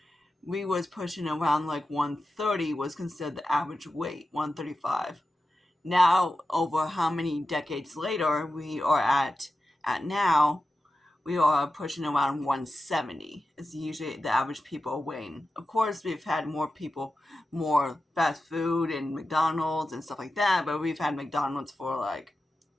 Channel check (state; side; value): normal; both; correlation 0.92